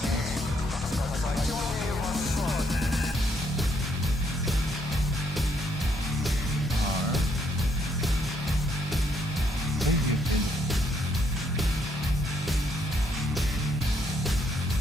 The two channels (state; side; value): normal; both; correlation 0.72